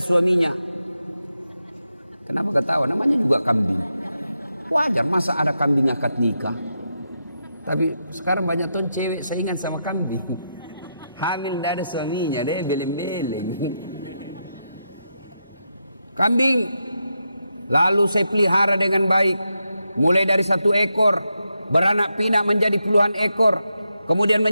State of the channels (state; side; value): inverted; both; correlation -0.85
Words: suaminya. Kenapa ketawa? Namanya juga kambing. Wajar, masa ada kambing akad nikah. Tapi sekarang banyak ton cewek saingan sama kambing. Hamil tidak ada suaminya, dia beleng-beleng. Kambing lalu saya pelihara dengan baik. Mulai dari 1 ekor, beranak pinak menjadi puluhan ekor, kemudian